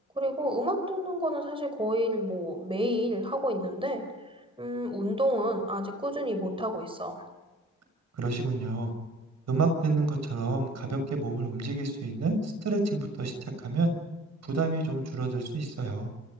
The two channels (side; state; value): both; normal; correlation 0.49